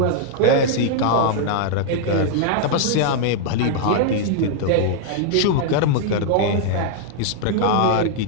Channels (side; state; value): both; different; correlation 0.00